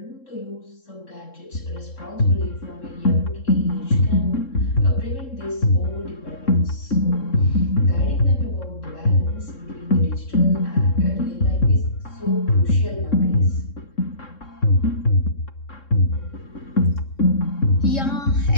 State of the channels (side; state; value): right; late; 3.7 ms